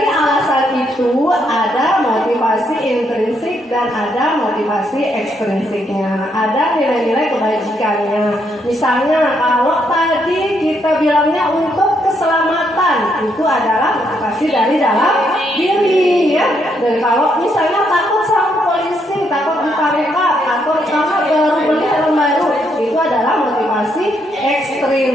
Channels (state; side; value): normal; both; correlation 0.75